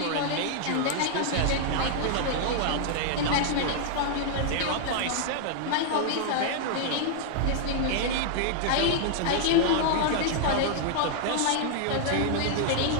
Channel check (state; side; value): different; both; correlation -0.01